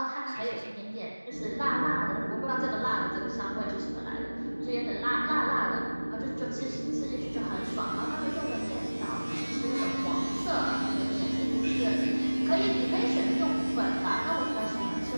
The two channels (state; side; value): inverted; both; correlation -1.00